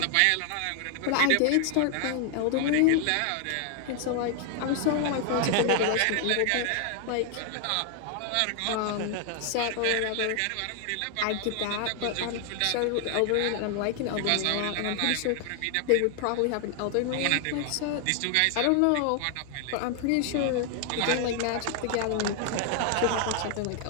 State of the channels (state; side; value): different; both; correlation 0.00